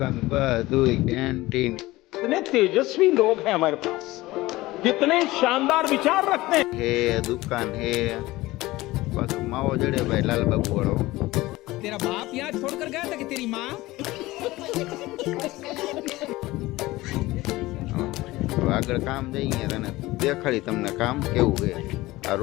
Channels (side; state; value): right; quieter; 18.9 dB